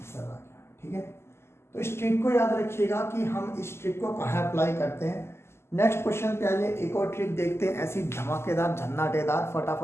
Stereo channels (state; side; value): late; right; 0.12 ms